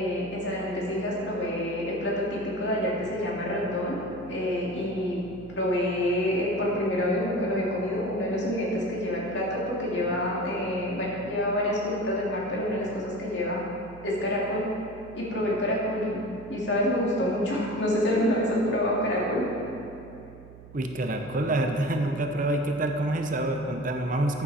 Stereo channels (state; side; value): noise; right; hum, 18 dB below the sound